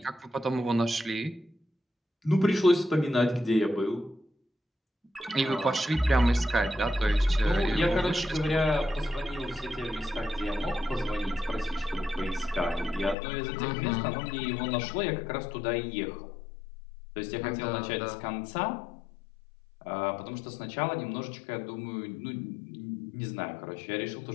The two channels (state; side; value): drops out; right; at 13.2 s